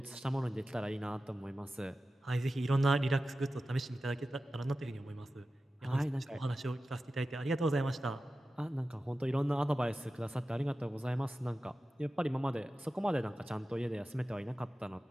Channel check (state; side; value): normal; both; correlation 0.94